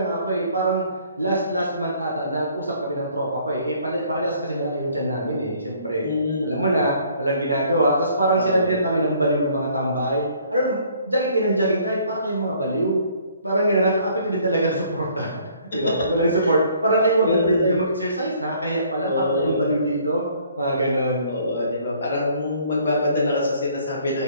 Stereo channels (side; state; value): both; inverted; correlation -0.60